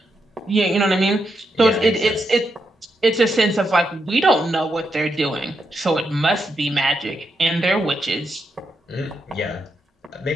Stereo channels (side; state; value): both; normal; correlation 0.83